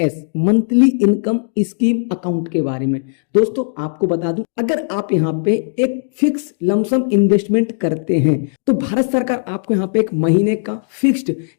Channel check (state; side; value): silent; right; digital silence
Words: monthly income scheme account के बारे में। दोस्तों आपको बता दूं, अगर आप यहाँ पे एक फिक्स लमसम इन्वेस्टमेंट करते हैं तो भारत सरकार आपको यहाँ पे एक महीने का फिक्स्ड